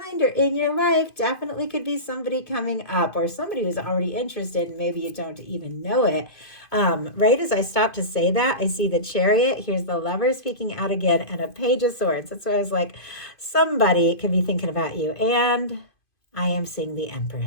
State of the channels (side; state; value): right; late; 2.5 ms